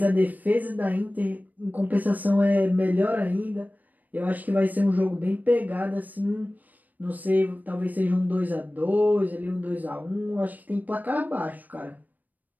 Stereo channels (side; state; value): left; late; 0.082 ms